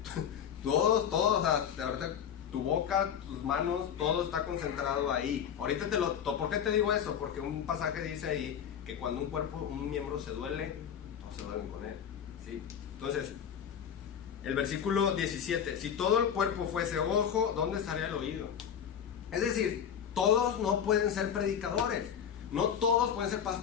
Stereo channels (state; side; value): quieter; right; 8.4 dB